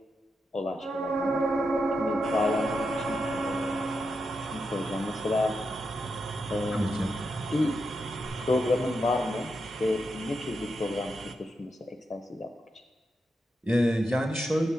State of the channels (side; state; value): both; normal; correlation 0.86